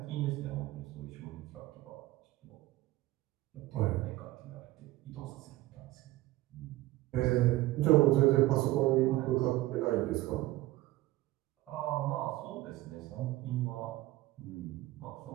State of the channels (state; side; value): quieter; left; 17.3 dB